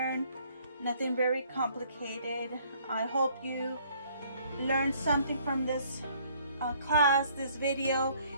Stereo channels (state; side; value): inverted; both; correlation -0.62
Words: nothing very complicated. I hope you learned something from this class, this video,